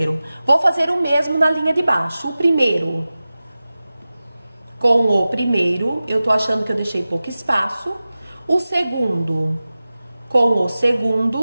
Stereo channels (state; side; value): inverted; both; correlation -0.96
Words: Vou fazer o mesmo na linha de baixo. O primeiro com o primeiro, eu tô achando que eu deixei pouco espaço. O segundo com o